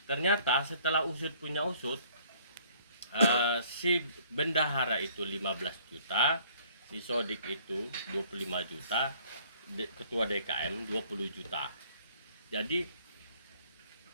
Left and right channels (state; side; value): inverted; both; correlation -0.59